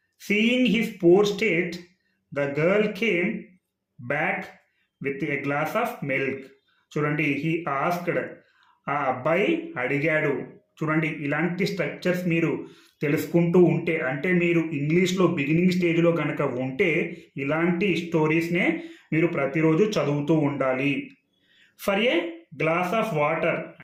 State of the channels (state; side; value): identical; both; correlation 1.00